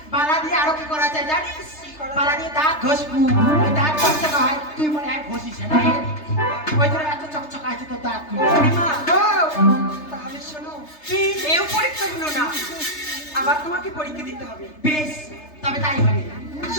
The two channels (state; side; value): late; right; 3.3 ms